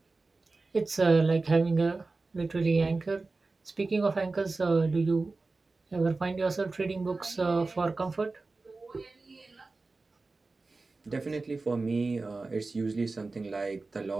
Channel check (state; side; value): quieter; left; 3.6 dB